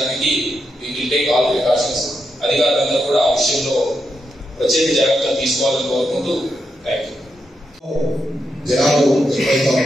we will take all precautions. అధికారులందరూ కూడా ఆ విషయంలో ప్రత్యేక జాగ్రత్తలు తీసుకోవాలని కోరుకుంటూ థ్యాంక్ యూ. జనాలు ఎక్కువైతే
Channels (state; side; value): normal; both; correlation 0.83